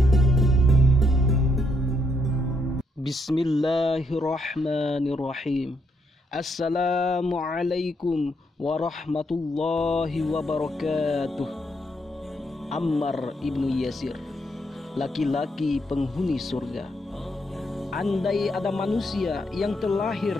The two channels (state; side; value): normal; both; correlation 0.75